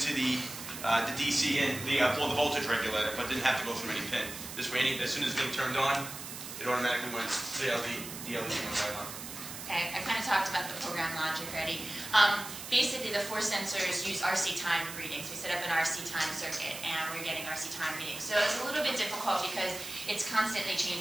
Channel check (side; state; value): right; noise; hiss, 10 dB below the sound